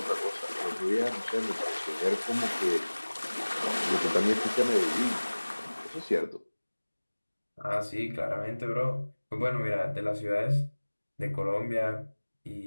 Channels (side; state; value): both; inverted; correlation -1.00